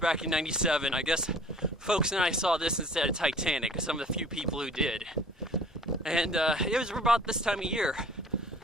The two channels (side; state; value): both; normal; correlation 0.49